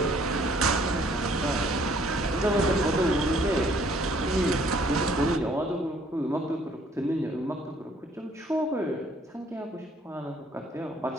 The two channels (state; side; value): normal; both; correlation 0.61